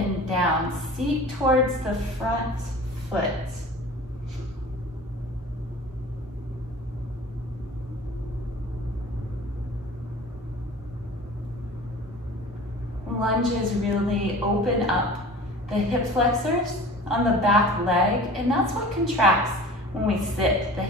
down. Seat towards the front foot. Lunges really open up the hip flexors on the back leg, and that's what contracts when we sit, the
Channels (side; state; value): both; normal; correlation 0.41